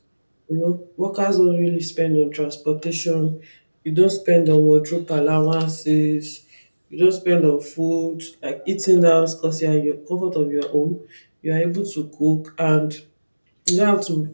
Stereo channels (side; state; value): both; inverted; correlation -1.00